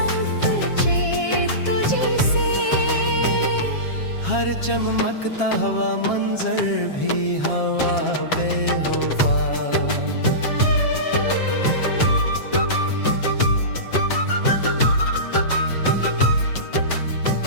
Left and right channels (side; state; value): right; late; 7.4 ms